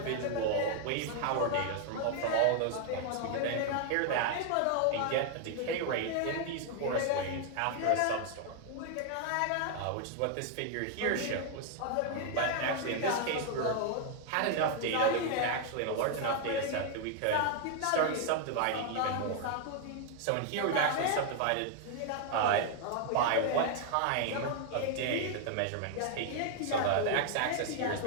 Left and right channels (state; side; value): different; both; correlation 0.00